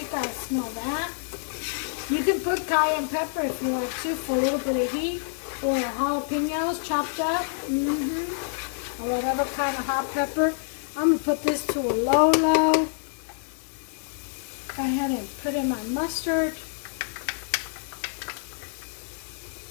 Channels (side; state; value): right; silent; digital silence